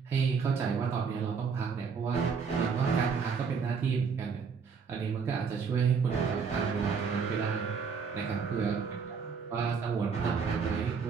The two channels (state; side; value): quieter; left; 5.8 dB